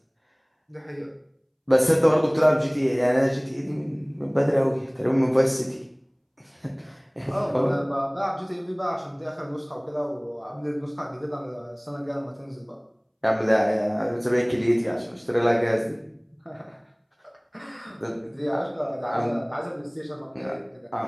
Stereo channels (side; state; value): both; identical; correlation 1.00